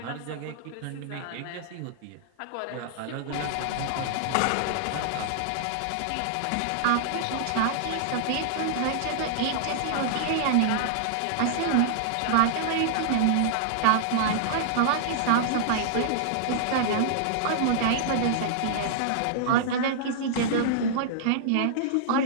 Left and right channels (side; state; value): both; different; correlation -0.01